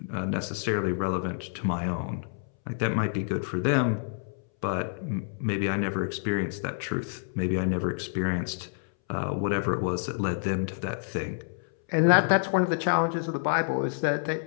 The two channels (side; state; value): right; silent; 59 dB below the other